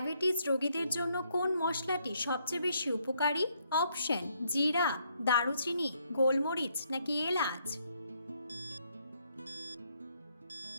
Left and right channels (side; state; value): both; inverted; correlation -0.72